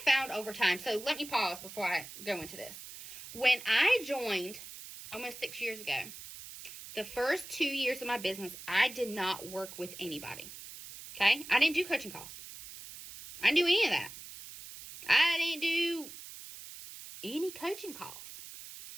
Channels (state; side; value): noise; right; hiss, 13 dB below the sound